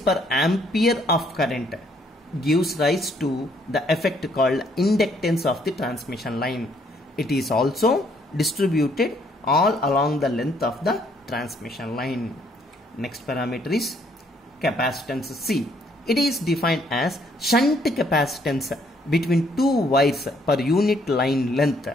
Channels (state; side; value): normal; both; correlation 0.67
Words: per ampere of current gives rise to the effect called inductance of the transmission line. It is also distributed all along the length of the transmission line. Next parameter is capacitance C. It is defined as shunt capacitance between two wires per unit line length.